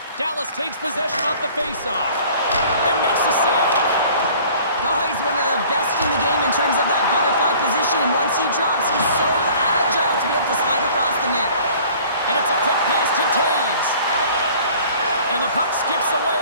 Dallas takes possession off the faceoff and makes the save. Oh, he's one of the best in the game in terms of that butterfly position, and once he drops, he's so agile to be able to slide across the net. And it's a quick pass to Taves. And the puck skips away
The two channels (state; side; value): inverted; both; correlation -0.50